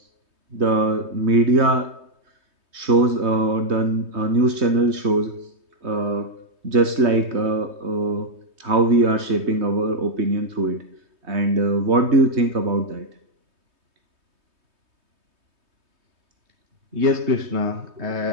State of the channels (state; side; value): late; left; 3.2 ms